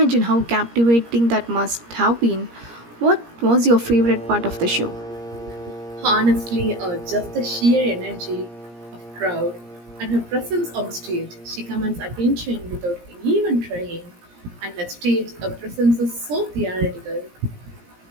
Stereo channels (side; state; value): left; late; 17 ms